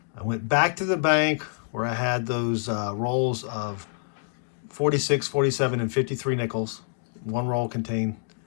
I went back to the bank where I had those rolls of 46, 47, and 53 nickels. One roll contained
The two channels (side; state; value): right; silent; digital silence